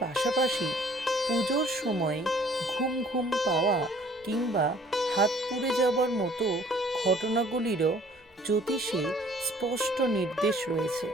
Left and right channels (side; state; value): both; normal; correlation 0.56